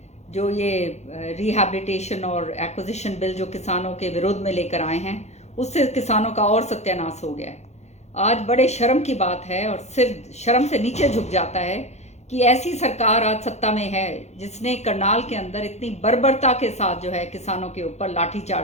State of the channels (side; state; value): right; late; 0.32 ms